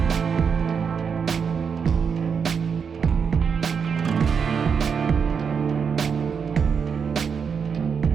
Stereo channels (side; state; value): left; quieter; 6.3 dB